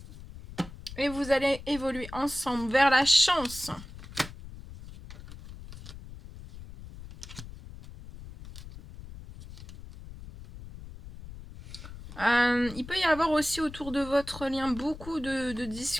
Et vous allez évoluer ensemble vers la chance. Il peut y avoir aussi autour de votre lien beaucoup de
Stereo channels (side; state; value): left; noise; rumble, 14 dB below the sound